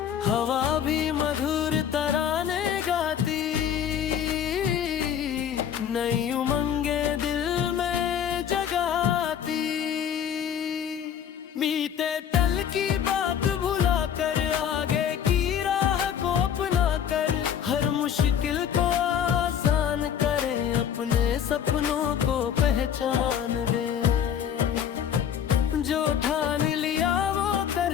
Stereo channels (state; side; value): quieter; right; 8.8 dB